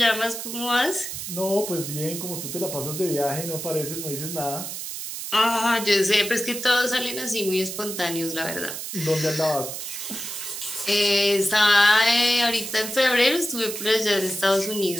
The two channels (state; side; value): noise; right; hiss, 7 dB below the sound